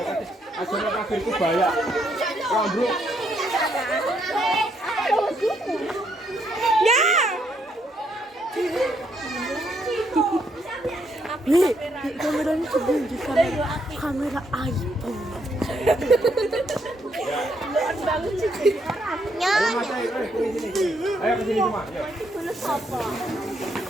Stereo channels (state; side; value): normal; both; correlation 0.74